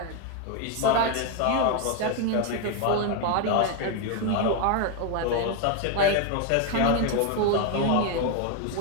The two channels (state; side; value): different; both; correlation 0.01